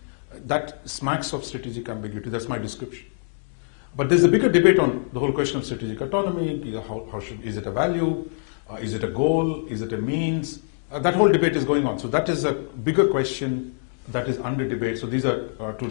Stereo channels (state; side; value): silent; right; digital silence